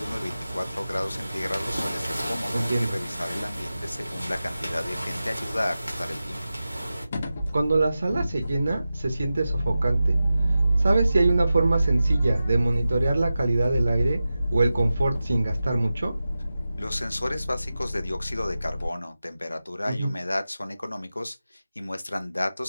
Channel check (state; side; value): inverted; both; correlation -0.94